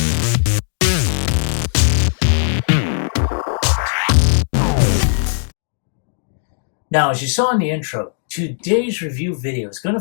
Now, as you saw in the intro, today's review video is going to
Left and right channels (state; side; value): silent; right; digital silence